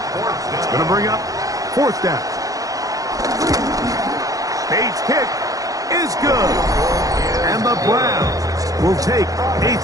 It's going to bring up fourth down. Bates' kick is good. And the Browns will take a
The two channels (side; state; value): left; late; 0.17 ms